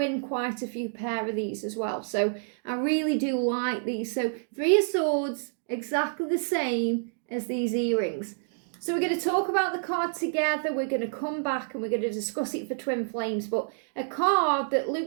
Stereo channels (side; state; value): left; silent; digital silence